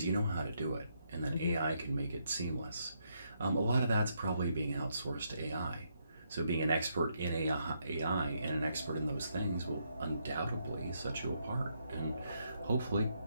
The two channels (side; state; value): both; inverted; correlation -0.77